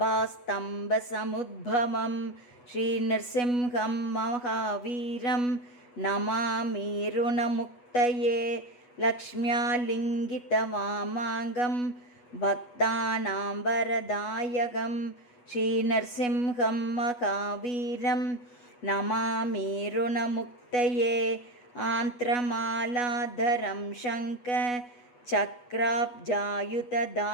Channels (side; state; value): right; late; 8.2 ms